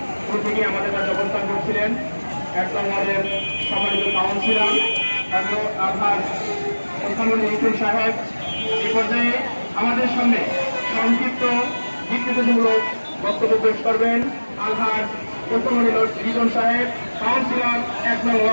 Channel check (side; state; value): both; inverted; correlation -1.00